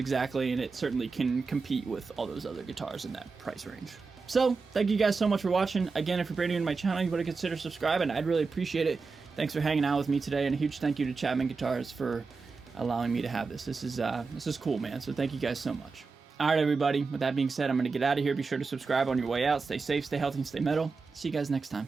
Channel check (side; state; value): left; quieter; 4.5 dB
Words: and it certainly can compete with all those other guitars in that price range. So, thank you guys so much for watching. Again, if you're brand new to my channel, you want to consider subscribing. I'd really appreciate it. Thanks for hanging out with me today, and a huge thank you to Chapman Guitars for allowing me to have this. This is cool, man, so thank you guys so much. Alright, everybody, with that being said, I'm going to get out of here. Be sure to subscribe on your way out. Stay safe, stay healthy, and stay metal. See you guys next